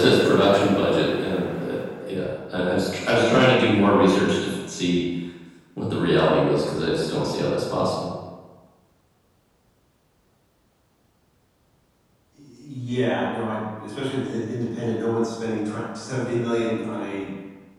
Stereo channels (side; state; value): both; identical; correlation 1.00